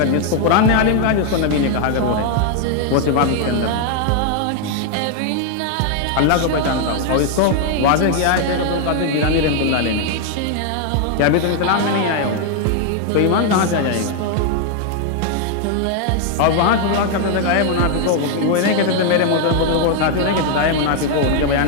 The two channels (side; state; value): both; different; correlation 0.00